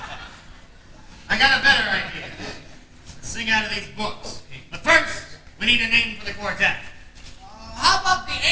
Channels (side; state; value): both; identical; correlation 1.00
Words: I got a better idea. Let's sing out of these books. But first, we need a name for the quartet. How about the